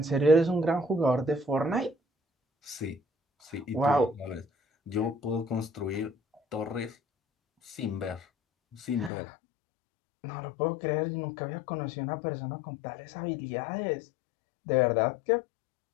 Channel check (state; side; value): drops out; right; at 9.1 s